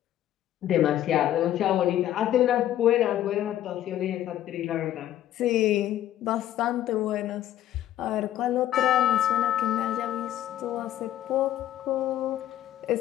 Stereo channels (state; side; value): quieter; right; 12.4 dB